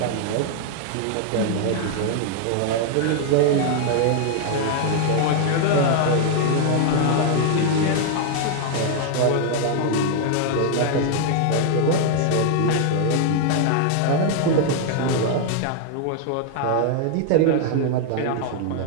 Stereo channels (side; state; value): both; different; correlation 0.00